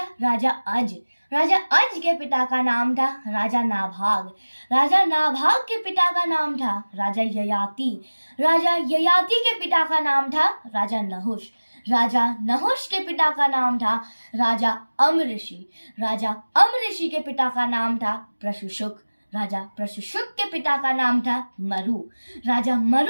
राजा अज। राजा अज के पिता का नाम था राजा नाभाग। राजा नाभाग के पिता का नाम था राजा ययाति। राजा ययाति के पिता का नाम था राजा नहुष। राजा नहुष के पिता का नाम था राजा अमऋषि। राजा अमऋषि के पिता का नाम था प्रशुशुक। राजा प्रशुशुक के पिता का नाम था मरु। राजा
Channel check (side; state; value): both; inverted; correlation -1.00